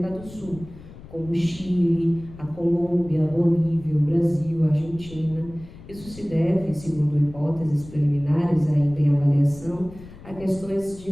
do Sul, como o Chile, a Colômbia, a Bolívia, o Brasil, a Argentina. Isso se deve, segundo hipóteses preliminares ainda em avaliação, a questões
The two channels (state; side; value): noise; left; rumble, 18 dB below the sound